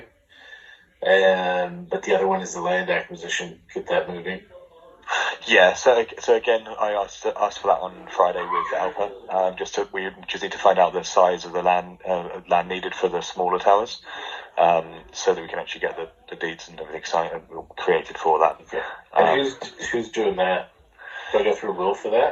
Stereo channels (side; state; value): both; identical; correlation 1.00